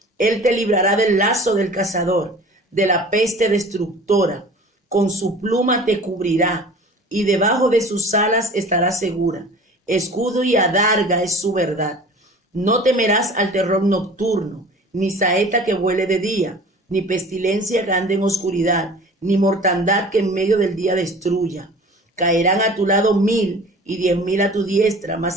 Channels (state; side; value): normal; both; correlation 0.43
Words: Él te librará del lazo del cazador, de la peste destructora. Con su pluma te cubrirá, y debajo de sus alas estarás segura. Escudo y adarga es su verdad. No temerás al terror nocturno, ni saeta que vuele de día, ni pestilencia que ande en oscuridad, ni mortandad que en medio del día destruya. Caerán a tu lado 1000 y 10,000 a tu diestra,